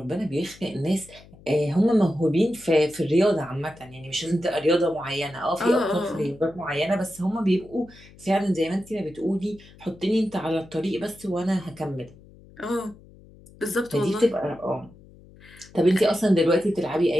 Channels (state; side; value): noise; left; hum, 23 dB below the sound